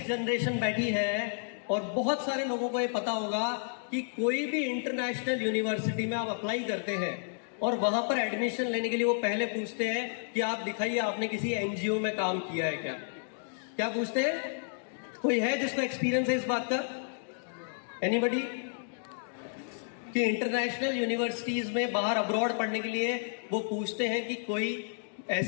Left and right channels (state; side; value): silent; right; digital silence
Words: जनरेशन बैठी है और बहुत सारे लोगों को ये पता होगा कि कोई भी इंटरनेशनल यूनिवर्सिटी में आप अप्लाई करते हैं और वहां पर एडमिशन लेने के लिए वो पहले पूछते हैं कि आप दिखाइए आपने किसी एनजीओ में काम किया है क्या। क्या पूछते हैं? कोई है जिसको एक्सपीरियंस है इस बात का? एनीबडी? कि इंटरनेशनल यूनिवर्सिटीज में बाहर अब्रॉड पढ़ने के लिए वो पूछते हैं कि कोई